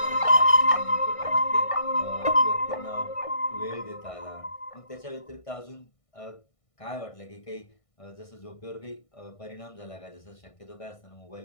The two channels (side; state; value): right; late; 1.6 ms